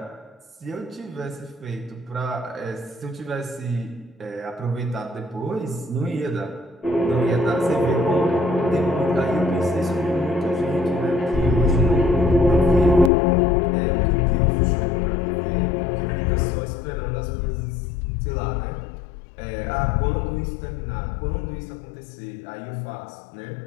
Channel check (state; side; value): drops out; right; at 13.1 s